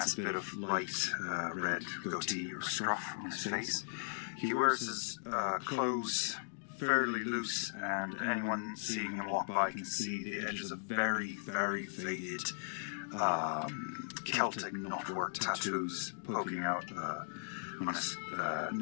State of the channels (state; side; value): silent; right; digital silence